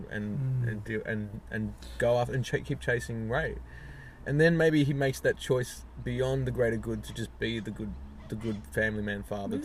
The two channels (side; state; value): both; identical; correlation 1.00